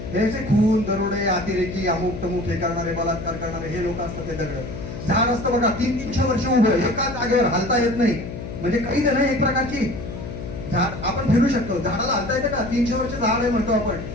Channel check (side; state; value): left; noise; hum, 8 dB below the sound